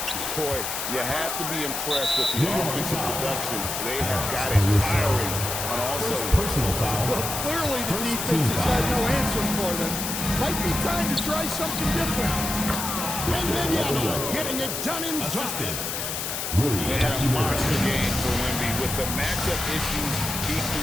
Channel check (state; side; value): noise; left; hiss, 3 dB below the sound